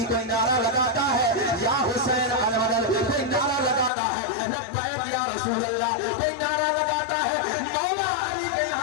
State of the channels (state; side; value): drops out; right; at 3.9 s